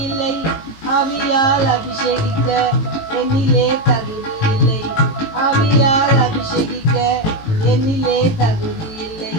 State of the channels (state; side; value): late; right; 19 ms